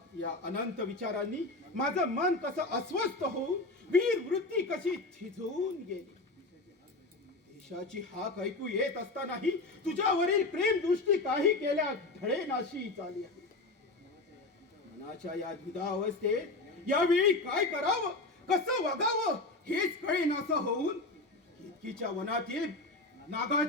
या अनंत विचारांनी माझं मन कसं अस्वस्थ होऊन वीर वृत्ती कशी थिजून गेली. देशाची हाक ऐकू येत असतानाही तुझ्यावरील प्रेम दृष्टी काही केल्या ढळेनाशी चालली आहे. मनाच्या या द्विधा अवस्थेत यावेळी काय करावं, कसं वागावं हेच कळेनासं होऊन केतकीच्या वनातील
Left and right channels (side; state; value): right; quieter; 3.1 dB